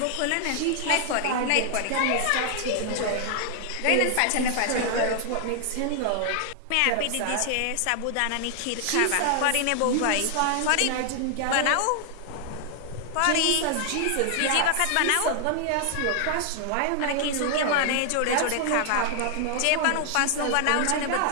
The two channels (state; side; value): different; both; correlation 0.00